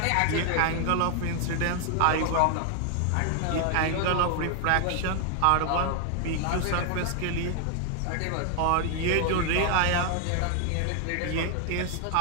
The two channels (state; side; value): different; both; correlation 0.00